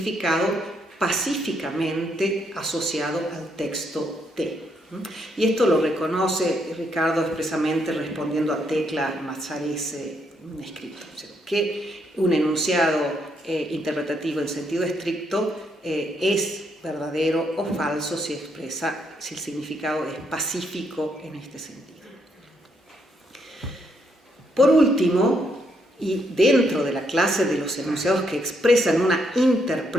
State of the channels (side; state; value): both; normal; correlation 0.75